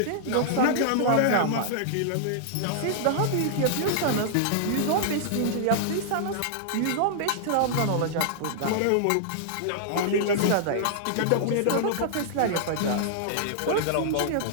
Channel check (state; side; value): different; both; correlation -0.01